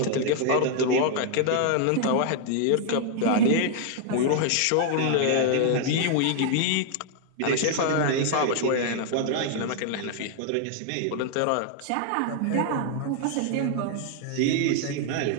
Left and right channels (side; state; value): both; different; correlation 0.00